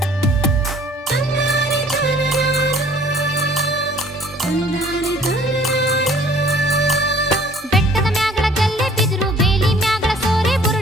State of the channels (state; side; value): normal; both; correlation 0.54